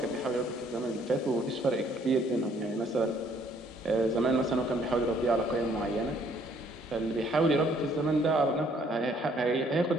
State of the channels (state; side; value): normal; both; correlation 0.63